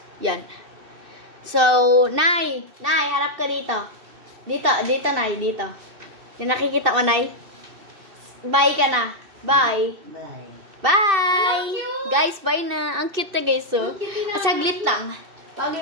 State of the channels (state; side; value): late; left; 2.6 ms